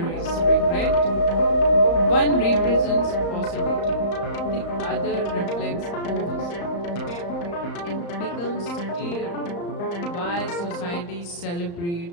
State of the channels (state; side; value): late; right; 35 ms